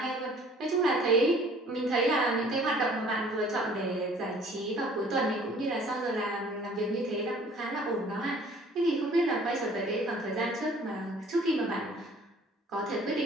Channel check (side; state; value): both; normal; correlation 0.53